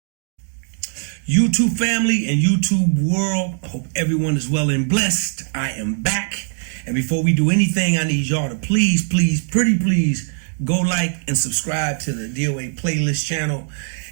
YouTube family and YouTube world, I hope everyone is well and blessed. I am back. And before we do anything, I need y'all to please, pretty please, go like and subscribe to the DOA playlist channel.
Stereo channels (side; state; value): left; silent; digital silence